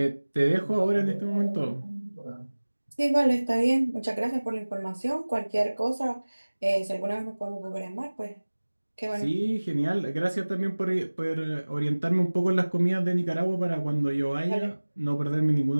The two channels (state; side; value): inverted; both; correlation -1.00